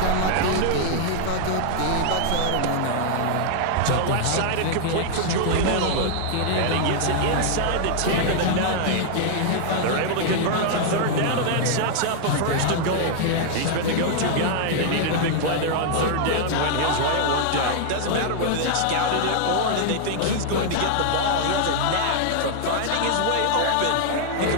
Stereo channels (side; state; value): both; different; correlation -0.01